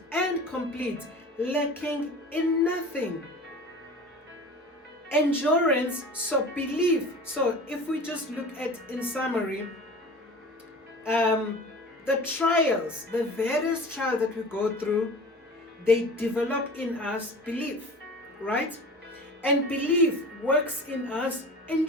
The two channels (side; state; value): both; normal; correlation 0.38